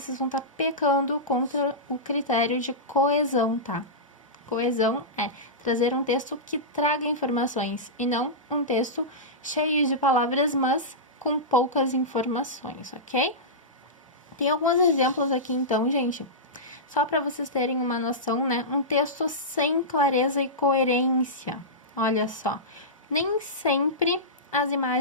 vão estar pecando contra o critério de coesão, tá? Coesão é trazer um texto que traga informações e não um texto cheio de palavras, mas com poucas informações, ok? Tem alguns exemplos aqui, então, gente. Só para vocês terem uma noção, né? Um texto sem clareza e coerência. Olha só. Nem sempre as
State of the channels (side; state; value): both; normal; correlation -0.15